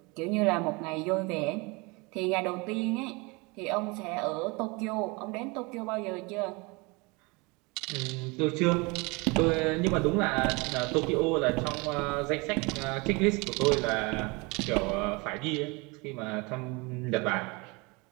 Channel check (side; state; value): left; quieter; 27.0 dB